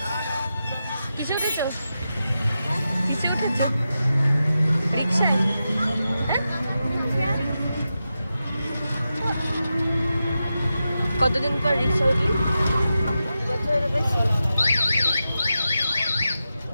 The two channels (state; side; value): inverted; both; correlation -0.90